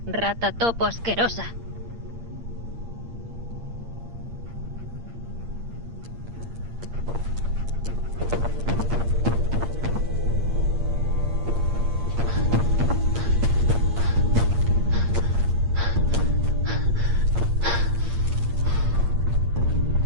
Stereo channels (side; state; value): left; late; 8.6 ms